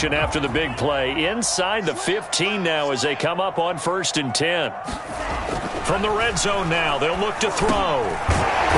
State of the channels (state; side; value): identical; both; correlation 1.00